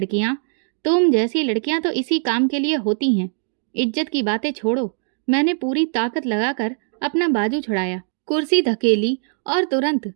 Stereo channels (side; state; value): left; silent; digital silence